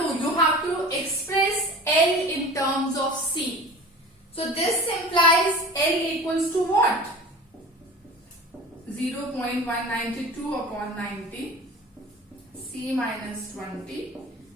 You have to express L in terms of C. So this implies L equals to what? 0.192 upon 90, C minus 20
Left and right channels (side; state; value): both; normal; correlation 0.37